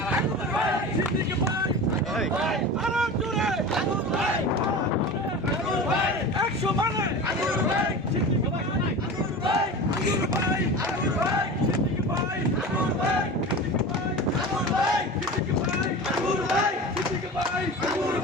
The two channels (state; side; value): normal; both; correlation 0.32